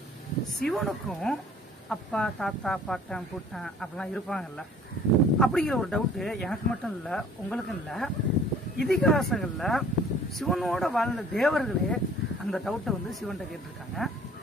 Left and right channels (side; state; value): both; normal; correlation 0.53